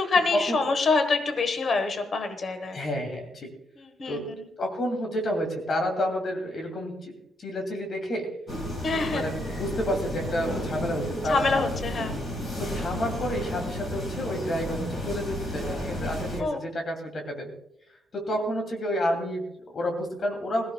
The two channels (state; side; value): normal; both; correlation 0.77